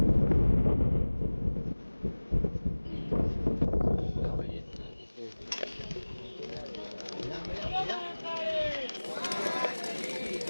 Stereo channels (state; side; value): inverted; both; correlation -1.00